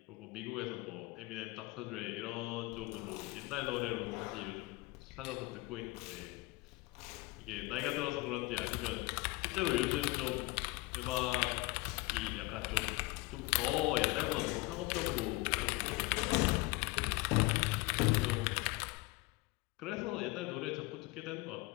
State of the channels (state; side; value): quieter; right; 22.5 dB